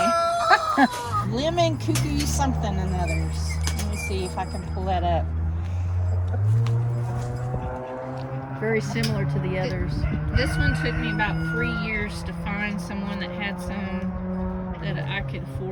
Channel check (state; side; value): identical; both; correlation 1.00